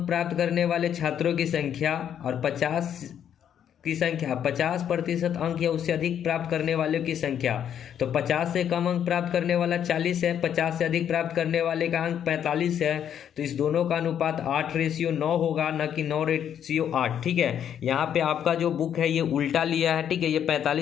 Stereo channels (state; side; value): quieter; right; 9.3 dB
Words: प्राप्त करने वाले छात्रों की संख्या और 50% अंक या उससे अधिक प्राप्त करने वालों की संख्या। तो 50 से कम अंक प्राप्त करने वाला 40 है, 50 से अधिक प्राप्त करने वाले का अंक 45 है। तो इस दोनों का अनुपात 8/9 होगा, न कि 9/8। ठीक है, यहाँ पे आपका जो बुक है ये उल्टा लिया है। ठीक है, ये